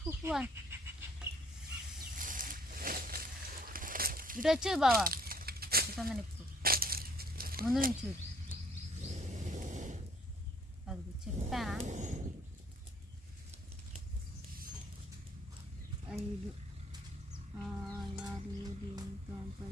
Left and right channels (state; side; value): normal; both; correlation 0.61